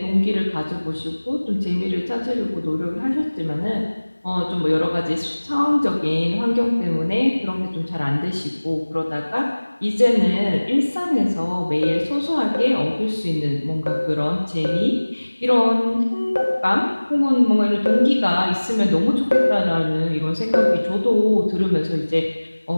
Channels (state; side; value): inverted; both; correlation -1.00